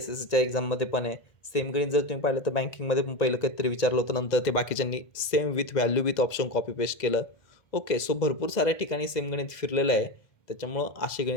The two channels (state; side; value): late; right; 2.0 ms